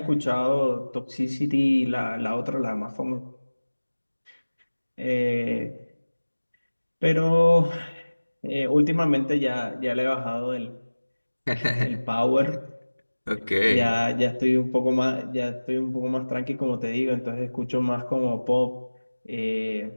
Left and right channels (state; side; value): inverted; both; correlation -1.00